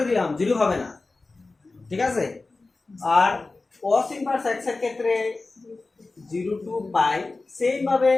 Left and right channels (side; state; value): right; quieter; 3.5 dB